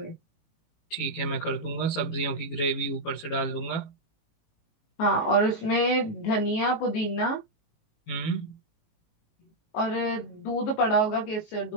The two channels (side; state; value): right; late; 19 ms